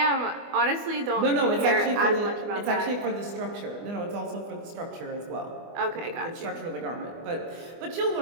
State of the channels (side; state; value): left; late; 24 ms